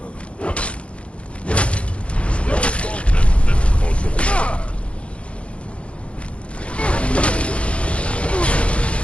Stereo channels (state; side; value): late; right; 0.061 ms